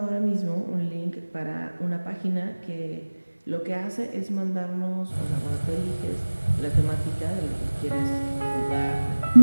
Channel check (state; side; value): inverted; both; correlation -1.00